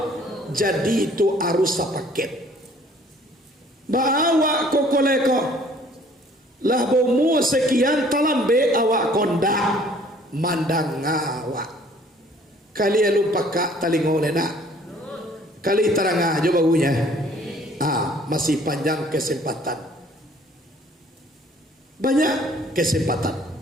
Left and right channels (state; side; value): normal; both; correlation 0.56